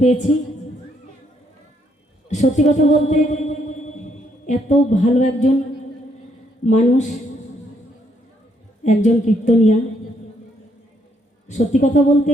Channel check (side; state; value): both; normal; correlation 0.72